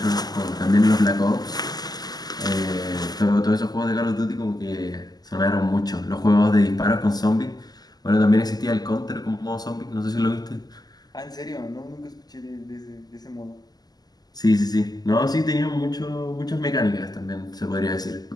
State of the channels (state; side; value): late; right; 0.19 ms